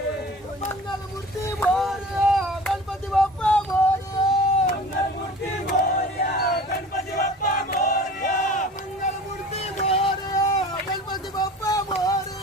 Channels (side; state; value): both; normal; correlation 0.41